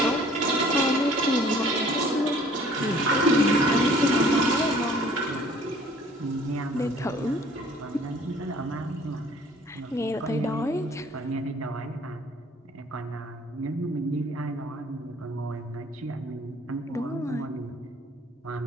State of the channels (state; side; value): normal; both; correlation 0.54